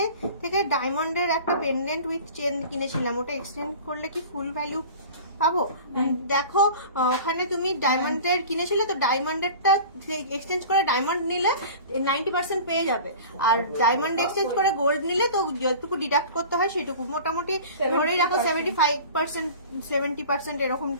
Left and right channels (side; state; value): both; inverted; correlation -0.39